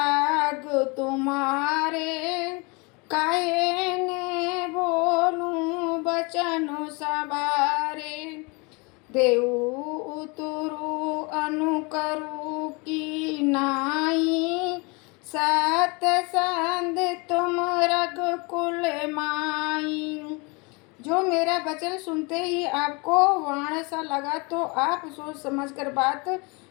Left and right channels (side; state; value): right; quieter; 29.2 dB